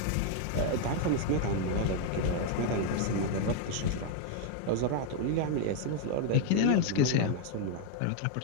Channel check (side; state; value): both; different; correlation 0.00